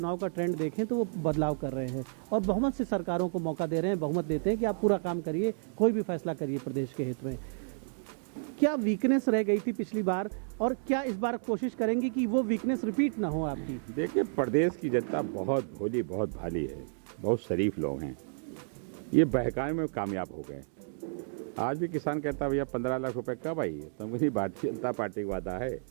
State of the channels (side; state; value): left; silent; digital silence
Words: का ट्रेंड देखें तो वो बदलाव कर रहे हैं और बहुमत से सरकारों को मौका दे रहे हैं, बहुमत देते हैं कि आप पूरा काम करिए, कोई भी फैसला करिए प्रदेश के हित में। क्या वीकनेस रह गई थी पिछली बार, और क्या इस बार कोशिश करेंगे कि वो वीकनेस रिपीट ना हो आपकी? देखिए, प्रदेश की जनता बहुत भोली, बहुत भाली है, बहुत शरीफ लोग हैं। ये बहकाने में कामयाब हो गए। आज भी किसान कहता भैया 15 लाख रुपए कब आई है, तो मुझे भारतीय जनता पार्टी का वादा है।